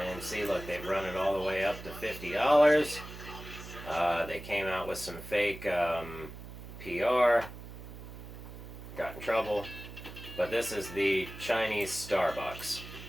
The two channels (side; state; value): right; noise; hum, 13 dB below the sound